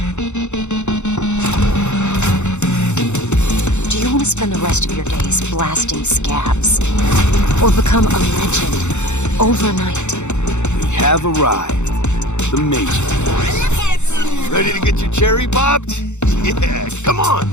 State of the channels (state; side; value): late; right; 0.83 ms